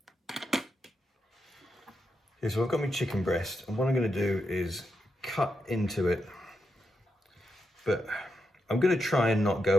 Okay, so I've got my chicken breast, and what I'm going to do is cut into it, but I'm going to try and not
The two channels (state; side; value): normal; both; correlation 0.85